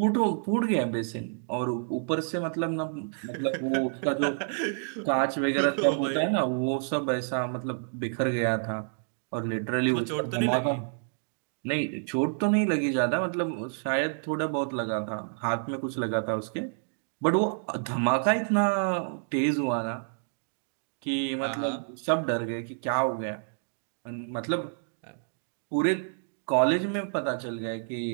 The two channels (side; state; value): left; silent; digital silence